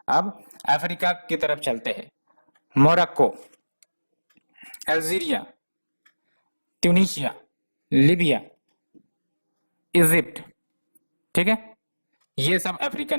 अब अफ्रीका की तरफ चलते हैं, Morocco, Algeria, Tunisia, Libya, Egypt, ठीक है। ये सब अफ्रीकन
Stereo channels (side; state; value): both; inverted; correlation -1.00